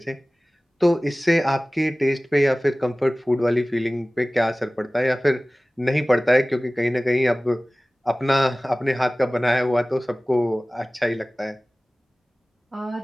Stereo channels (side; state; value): both; normal; correlation 0.98